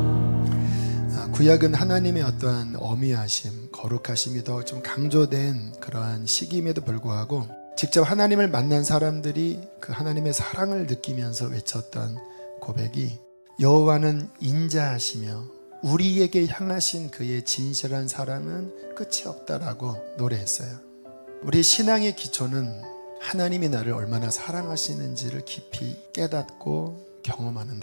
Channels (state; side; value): inverted; both; correlation -1.00